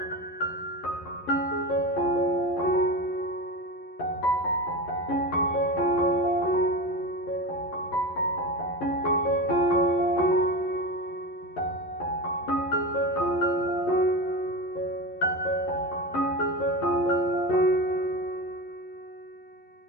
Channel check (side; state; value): right; late; 11 ms